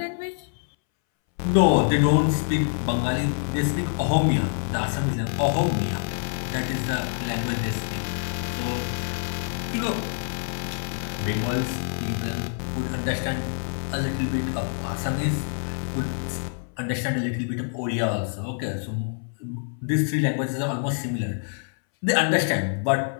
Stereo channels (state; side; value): silent; right; 61 dB below the other